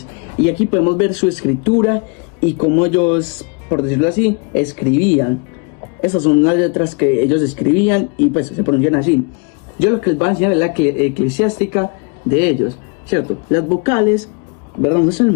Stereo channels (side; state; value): right; quieter; 33.8 dB